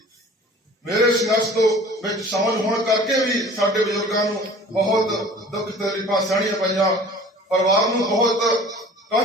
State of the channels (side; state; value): both; normal; correlation 0.46